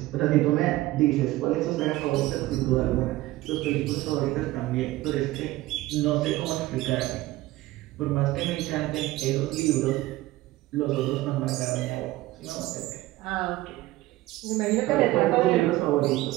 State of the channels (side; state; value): left; quieter; 17.5 dB